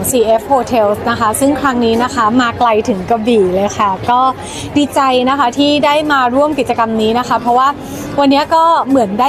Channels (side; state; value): both; identical; correlation 1.00